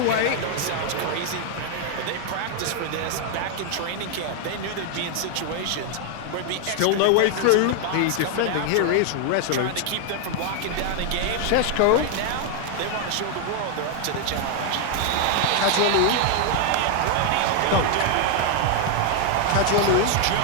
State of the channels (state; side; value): different; both; correlation 0.00